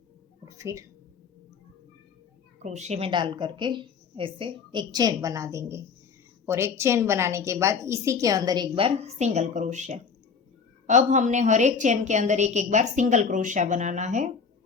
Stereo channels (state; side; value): quieter; right; 5.7 dB